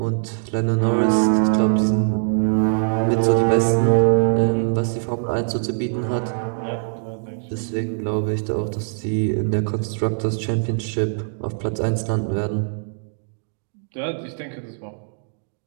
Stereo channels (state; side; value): silent; left; digital silence